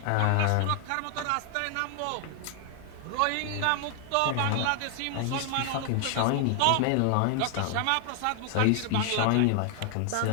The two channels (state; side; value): different; both; correlation 0.00